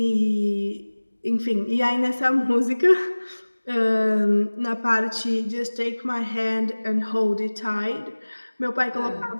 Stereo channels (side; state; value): both; inverted; correlation -1.00